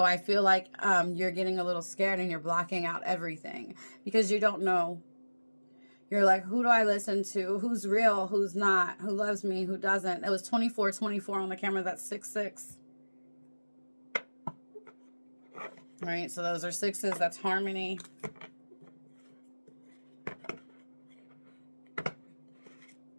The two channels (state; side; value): inverted; both; correlation -1.00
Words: I feel like you're getting a little scared and you're blocking out everything. Because you don't know. You're like, who do I listen to? Who's real? Who's not? Who loves me? Who doesn't? It was 24 on the camera. That's 6-6. All right, so those are 6s. That's harmony.